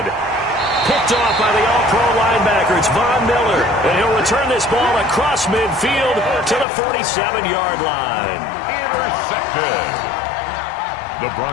Picked off by the all-pro linebacker. It's Von Miller. And he'll return this ball across midfield to the 47-yard line. Intercepted. The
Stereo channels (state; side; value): drops out; right; at 6.7 s